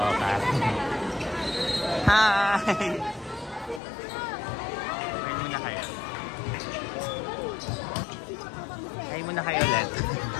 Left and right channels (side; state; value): right; drops out; at 3.8 s